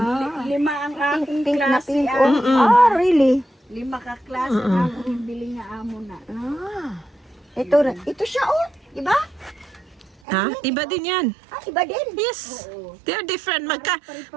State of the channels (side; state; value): left; drops out; at 10.2 s